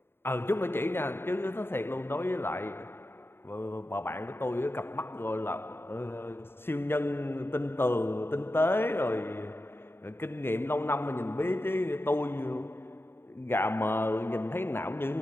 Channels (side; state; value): right; late; 0.11 ms